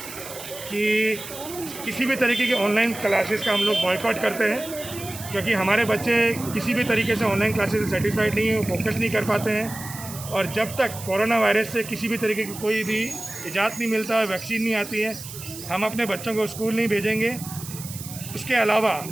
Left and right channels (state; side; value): noise; right; hiss, 12 dB below the sound